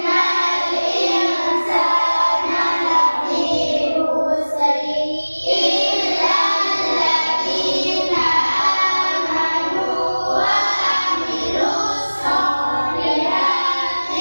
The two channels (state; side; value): inverted; both; correlation -1.00